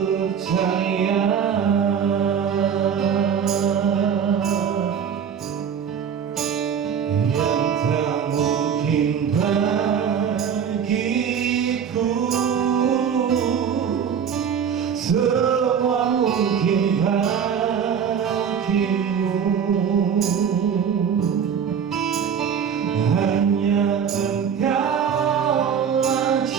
yang tak mungkin bagiku, semua mungkin bagimu. Hanya Engkaulah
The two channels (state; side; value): quieter; left; 7.6 dB